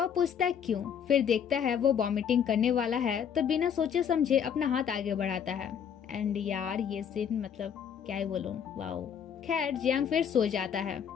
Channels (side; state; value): right; quieter; 8.0 dB